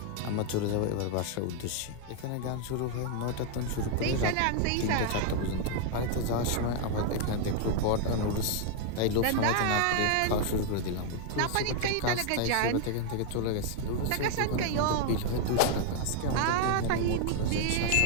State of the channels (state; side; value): different; both; correlation 0.00